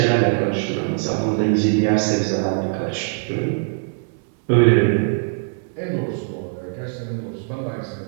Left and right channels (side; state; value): left; silent; digital silence